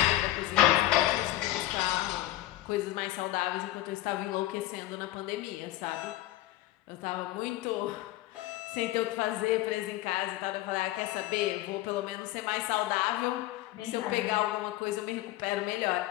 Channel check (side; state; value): right; quieter; 16.1 dB